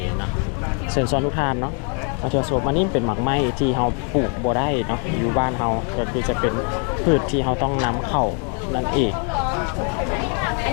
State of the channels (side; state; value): right; quieter; 39.8 dB